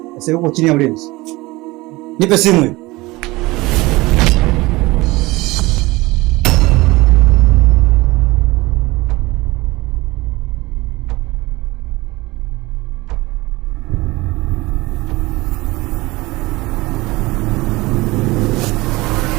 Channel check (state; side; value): quieter; left; 21.3 dB